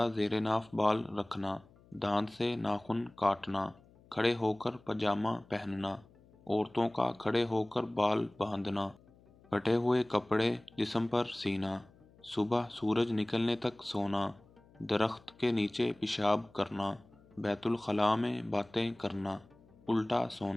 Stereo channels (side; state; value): left; noise; hum, 27 dB below the sound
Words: زیر ناف بال رکھنا، دانت سے ناخن کاٹنا، کھڑے ہو کر پاجامہ پہننا، عورتوں کا کھڑے ہو کر بال باندھنا، پھٹے ہوئے کپڑے جسم پر سینا، صبح سورج نکلنے تک سونا، درخت کے نیچے پیشاب کرنا، بیت الخلاء میں باتیں کرنا، الٹا